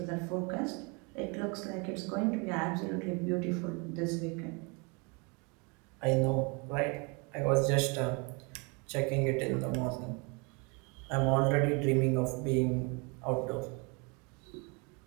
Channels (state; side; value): quieter; left; 31.4 dB